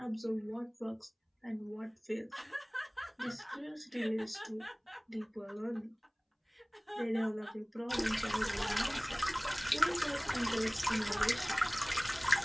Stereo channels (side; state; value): both; identical; correlation 1.00